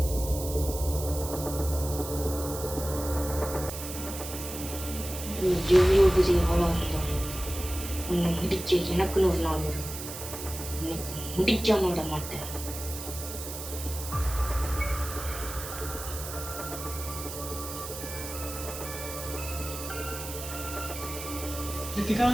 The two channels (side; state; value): right; noise; hiss, 9 dB below the sound